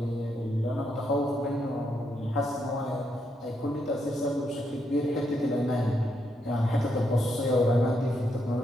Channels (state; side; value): normal; both; correlation 0.79